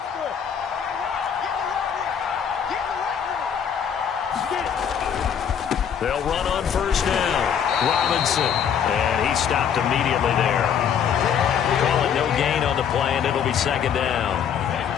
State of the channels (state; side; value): quieter; right; 8.0 dB